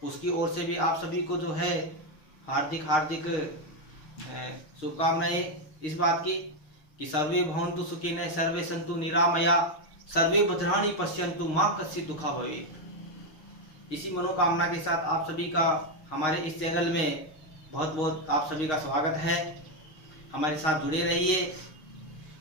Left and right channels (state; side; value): late; right; 6.4 ms